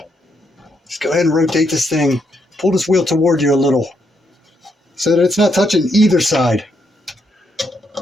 Just go ahead and rotate this thing. Pull this wheel toward you a little so that it's not touching either side.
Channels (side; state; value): both; normal; correlation 0.77